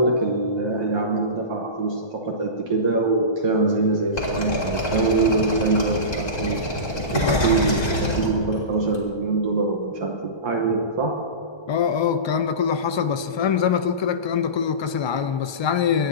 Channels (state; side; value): late; right; 1.3 ms